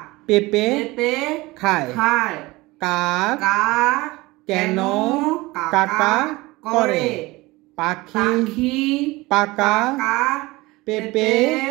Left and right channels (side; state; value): left; quieter; 21.3 dB